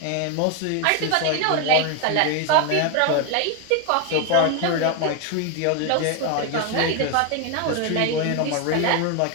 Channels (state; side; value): different; both; correlation 0.01